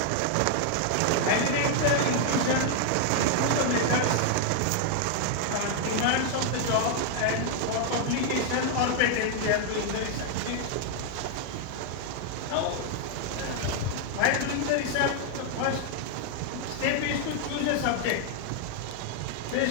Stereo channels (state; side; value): different; both; correlation 0.00